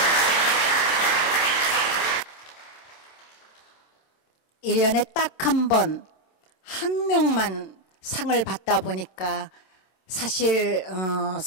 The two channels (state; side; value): late; right; 27 ms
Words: 일 년에 딱 한 번, 한 명만 상을 받다 보니까 사실